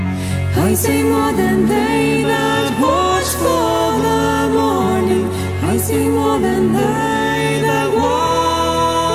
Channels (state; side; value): identical; both; correlation 1.00